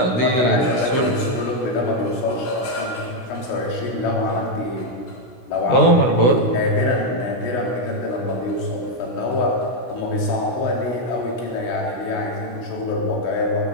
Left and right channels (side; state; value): right; late; 16 ms